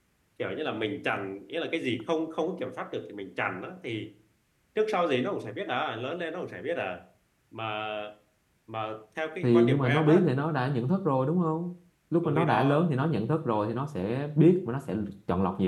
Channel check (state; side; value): identical; both; correlation 1.00